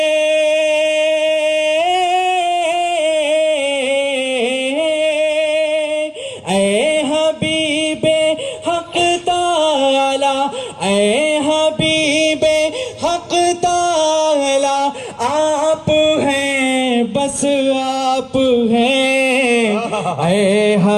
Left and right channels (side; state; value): both; identical; correlation 1.00